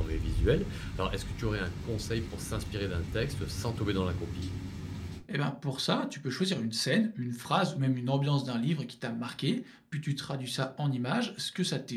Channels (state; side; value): identical; both; correlation 1.00